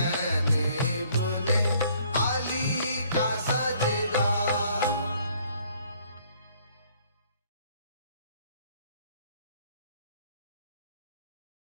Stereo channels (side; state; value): both; inverted; correlation -0.62